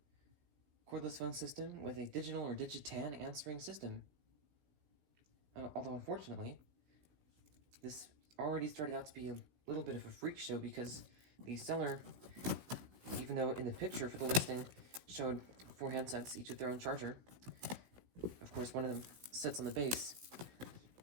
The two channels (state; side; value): late; left; 16 ms